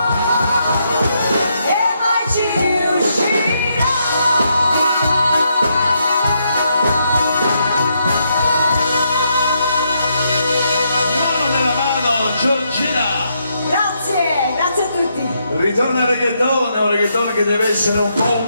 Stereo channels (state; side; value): inverted; both; correlation -0.78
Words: e mai ci riuscirà. Mano nella mano, Giorgina. Grazie, grazie a tutti. Ritorna il reggaeton, è un reggaeton che deve essere un po'